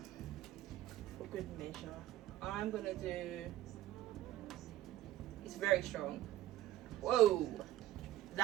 for good measure. I'm gonna do, it's very strong. Whoa,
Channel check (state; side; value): quieter; left; 14.2 dB